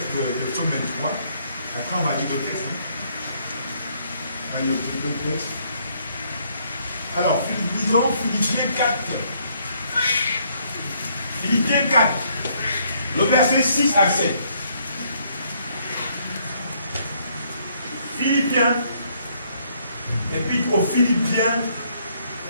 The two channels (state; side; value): inverted; both; correlation -0.68